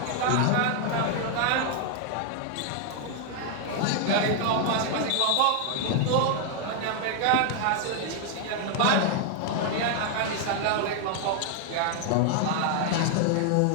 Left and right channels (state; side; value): different; both; correlation 0.00